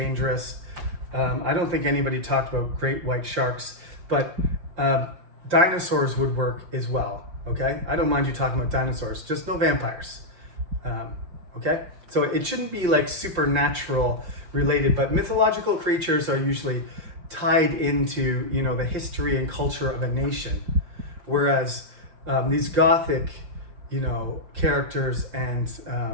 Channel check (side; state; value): left; late; 5.7 ms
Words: I don't think anybody talked about great white sharks, but dinosaurs would work as well. Okay, I don't mind you talking about dinosaurs, just no vampires. Okay, so it shouldn't be like supernatural related, but mythological creatures are usually tied into, you know, the history and culture of a nation, whereas these gothic, you know, characters and